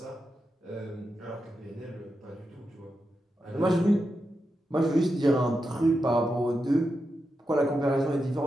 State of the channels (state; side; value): normal; both; correlation 0.88